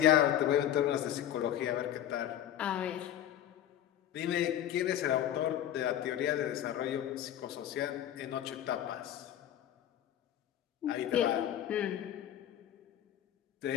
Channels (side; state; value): right; quieter; 11.2 dB